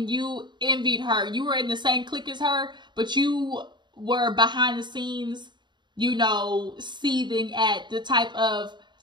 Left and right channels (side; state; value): left; late; 0.22 ms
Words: you envied her. You were in the same clique as her, but you were behind the scenes, you know, seething at the type of